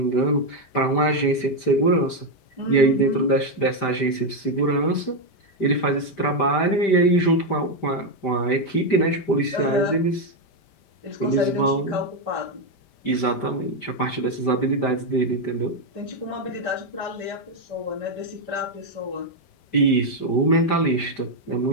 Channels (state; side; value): late; right; 5.0 ms